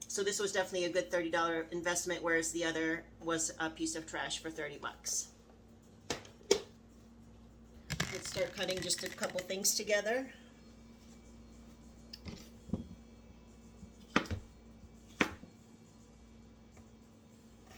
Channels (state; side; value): identical; both; correlation 1.00